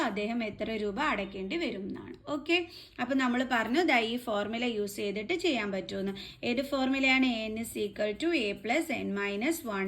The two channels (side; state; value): both; identical; correlation 1.00